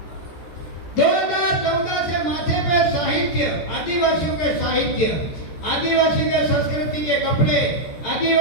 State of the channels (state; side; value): late; right; 14 ms